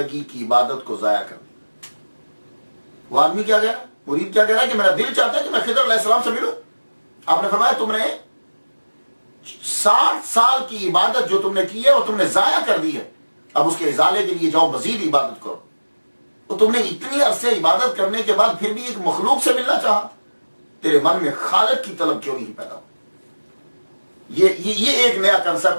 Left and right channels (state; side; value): inverted; both; correlation -1.00